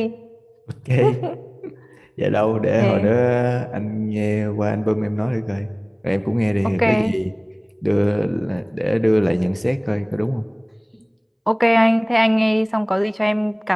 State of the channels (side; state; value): both; identical; correlation 1.00